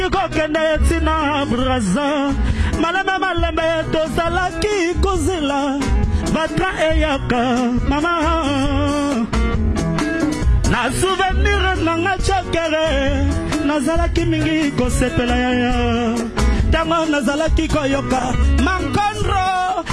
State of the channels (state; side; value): identical; both; correlation 1.00